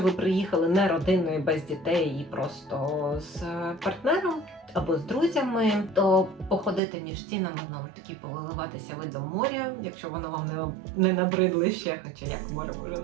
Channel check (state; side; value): drops out; left; at 6.8 s